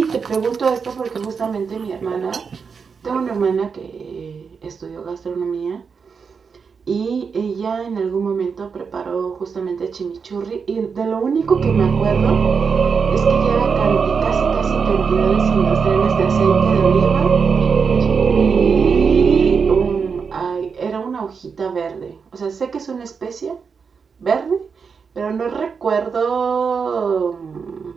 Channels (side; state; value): left; quieter; 5.7 dB